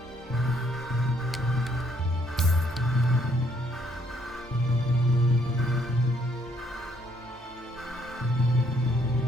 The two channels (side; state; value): both; normal; correlation 0.68